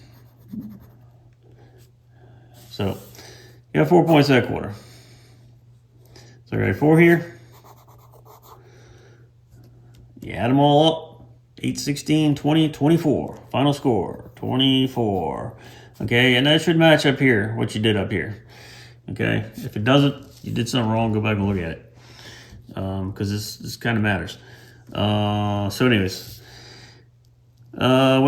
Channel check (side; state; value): both; identical; correlation 1.00